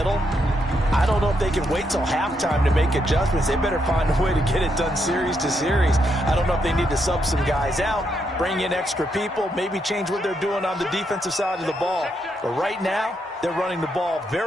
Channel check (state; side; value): normal; both; correlation 0.79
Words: I don't know if they can wait till halftime to make adjustments. They better find a way to get it done series to series. I don't know if they need to sub some guys out, bring in extra people, maybe change what they're doing on the defensive side of the ball. But right now, they're running the ball